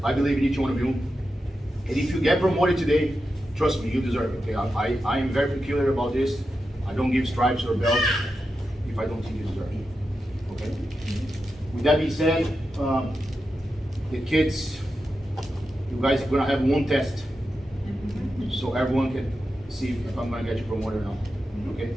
I believe in each one of you. And if you get promoted today, trust me, you deserve it. Okay, I am very peculiar about this. I don't give stripes or belts if I don't think you deserve it. Okay. With that being said, the kids, you guys are gonna have one test, so everyone can see if I'm gonna get you promoted or not. Okay.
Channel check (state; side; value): normal; both; correlation 0.89